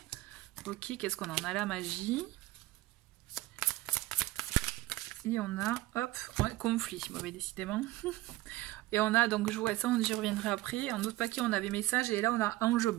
Ok, qu'est-ce qu'on a? On a la magie. Et on a, hop, ouais, conflit. Mauvais, décidément. Et on a, donc, je vois ça, j'y reviendrai après. En autre paquet, on avait message. Et là, on a ange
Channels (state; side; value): quieter; left; 17.7 dB